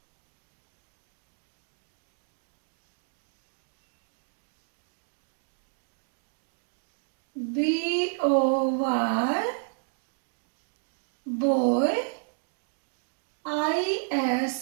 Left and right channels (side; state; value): left; silent; digital silence